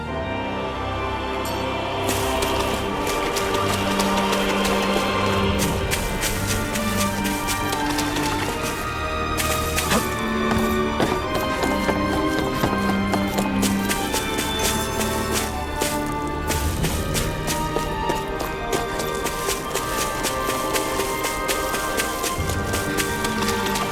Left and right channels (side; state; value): both; identical; correlation 1.00